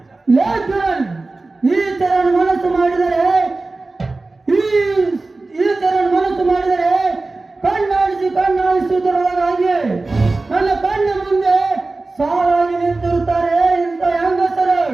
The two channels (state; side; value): quieter; left; 3.4 dB